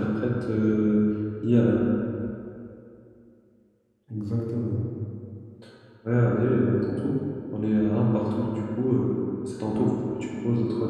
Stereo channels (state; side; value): identical; both; correlation 1.00